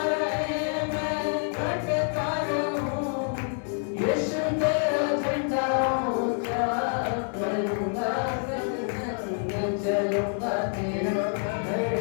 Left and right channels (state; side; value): silent; right; 55 dB below the other